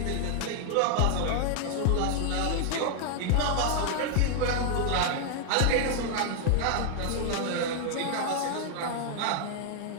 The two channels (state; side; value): different; both; correlation 0.00